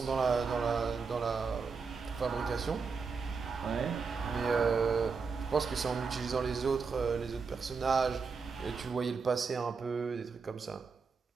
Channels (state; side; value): quieter; left; 5.1 dB